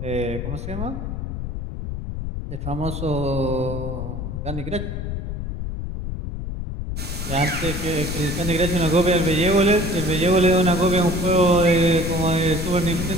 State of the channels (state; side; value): noise; left; rumble, 5 dB below the sound